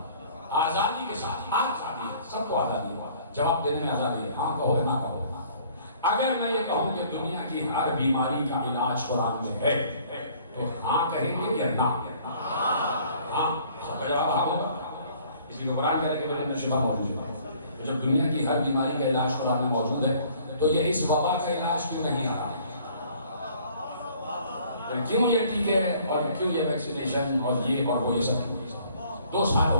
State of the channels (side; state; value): both; inverted; correlation -0.57